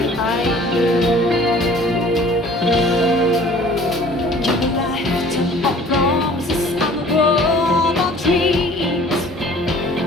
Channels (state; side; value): normal; both; correlation 0.50